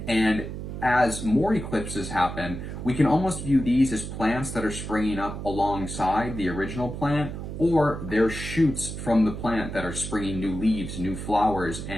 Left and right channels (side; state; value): right; noise; hum, 7 dB below the sound